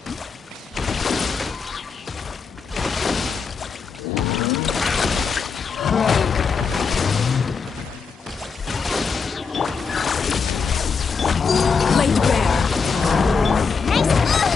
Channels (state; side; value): quieter; right; 5.3 dB